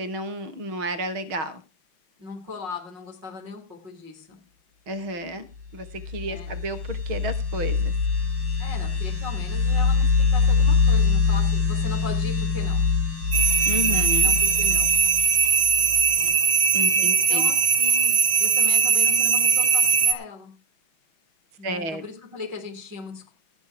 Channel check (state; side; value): late; left; 6.0 ms